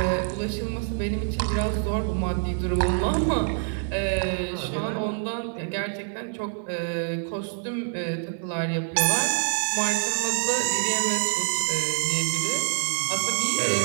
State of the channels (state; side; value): silent; left; 61 dB below the other